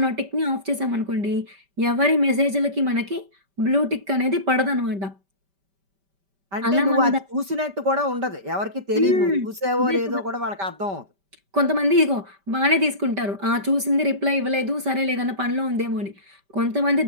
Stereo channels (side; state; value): left; late; 5.1 ms